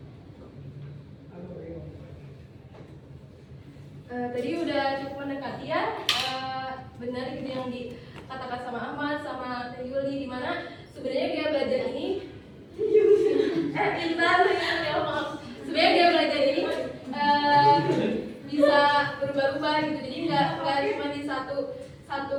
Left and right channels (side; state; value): both; identical; correlation 1.00